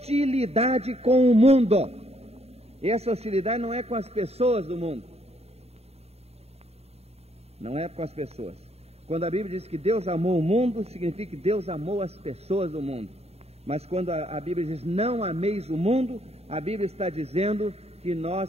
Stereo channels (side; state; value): left; late; 0.30 ms